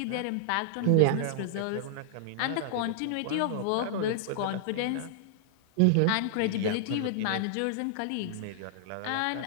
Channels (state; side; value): different; both; correlation -0.01